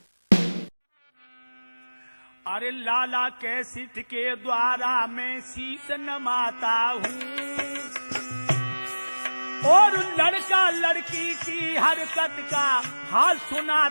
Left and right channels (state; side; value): inverted; both; correlation -1.00